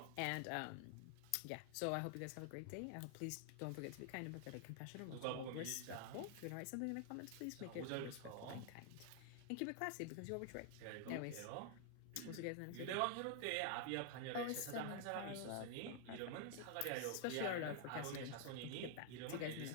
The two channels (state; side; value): different; both; correlation 0.00